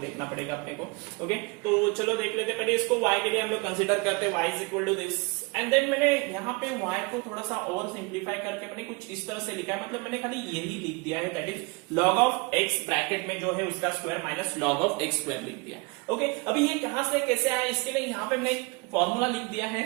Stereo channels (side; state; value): left; quieter; 27.9 dB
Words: पड़ेगा अपने को। ओके, तो चलो देख लेते, पहले इसको y के लिए हम लोग कंसीडर करते हैं, y is equal to this, and then मैंने यहाँ पे y को थोड़ा सा और सिंप्लीफाई करके मैंने कुछ इस तरह से लिखा है, मतलब मैंने खाली यही लिख दिया है, that is log of x bracket में जो है उसका square minus log of x square लिख दिया। ओके, अभी ये कहां से कैसे आया, इसके लिए यहाँ पे मैंने एक फॉर्मूला लिख दिया है,